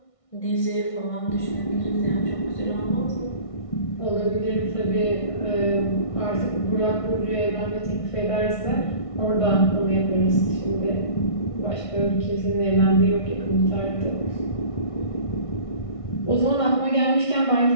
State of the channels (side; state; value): right; late; 1.6 ms